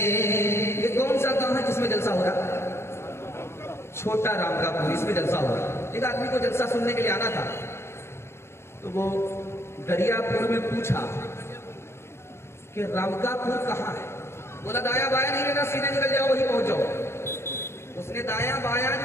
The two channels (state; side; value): late; right; 0.12 ms